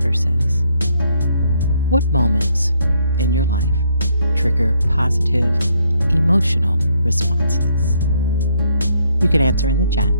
says, what moments in your life trigger positive emotional responses? You can answer in the chat.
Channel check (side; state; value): both; inverted; correlation -0.71